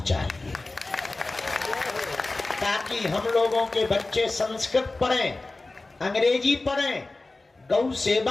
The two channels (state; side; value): quieter; right; 3.2 dB